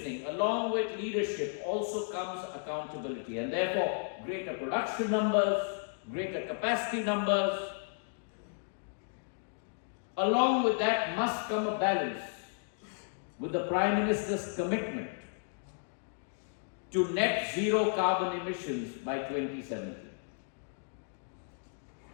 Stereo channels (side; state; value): right; silent; digital silence